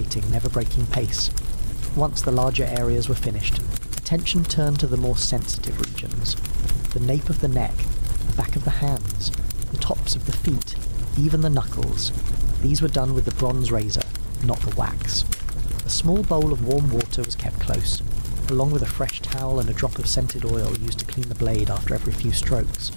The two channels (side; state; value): both; inverted; correlation -1.00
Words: never breaking pace. Once the larger areas were finished, attention turned to the more sensitive regions. The nape of the neck, the back of the hands, the tops of the feet, even the knuckles. These were done with the bronze razor, not the wax. A small bowl of warm water was kept close, along with a fresh towel and a drop of scented oil used to clean the blade after every few strokes.